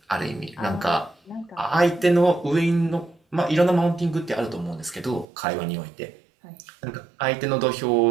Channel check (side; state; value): left; drops out; at 5.2 s